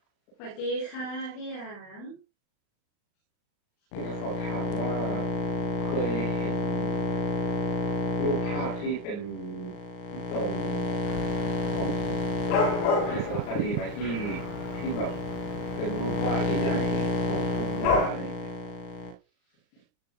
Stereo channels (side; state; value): right; late; 40 ms